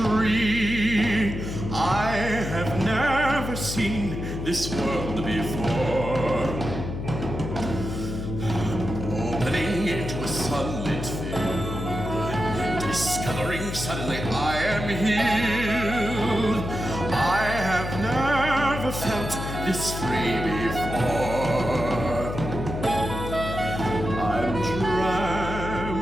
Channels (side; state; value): left; noise; hum, 5 dB below the sound